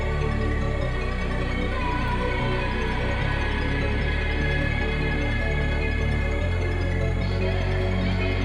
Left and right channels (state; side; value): identical; both; correlation 1.00